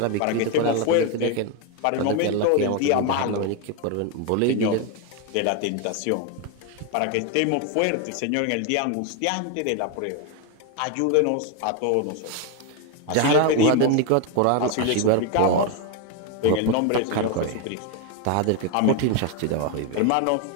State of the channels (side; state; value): both; different; correlation 0.01